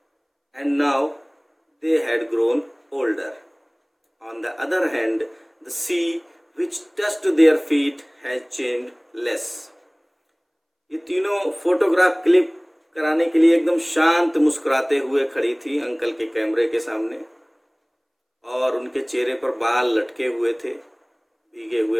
and now they had grown older. On the other hand, the sea which touched their feet has changed less. ये तीनों photograph click कराने के लिए एकदम शांत मुस्कुराते हुए खड़ी थी अंकल के कैमरे के सामने, और उनके चेहरे पर बाल लटके हुए थे, भीगे हुए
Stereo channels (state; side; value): identical; both; correlation 1.00